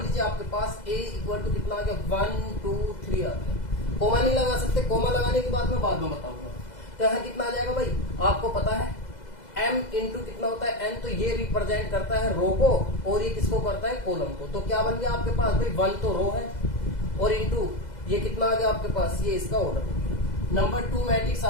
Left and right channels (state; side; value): late; right; 2.0 ms